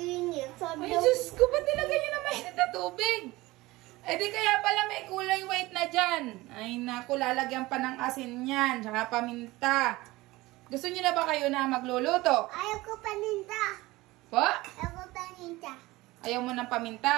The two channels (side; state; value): left; quieter; 19.9 dB